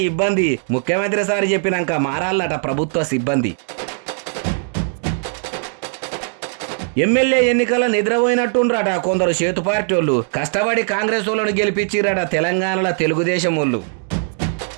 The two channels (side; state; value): left; silent; 59 dB below the other